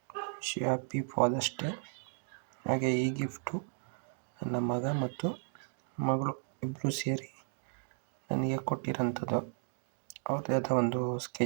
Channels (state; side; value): silent; left; 55 dB below the other